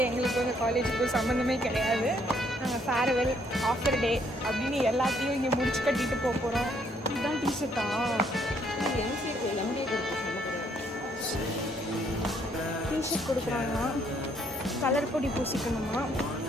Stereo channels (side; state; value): both; normal; correlation 0.68